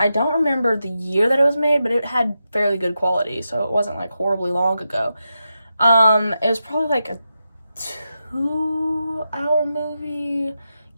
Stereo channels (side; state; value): both; inverted; correlation -0.88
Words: don't remember the year that it was made, but it had fairly good quality, so it wasn't, like, horribly long ago. It was probably, like, a 2-hour movie,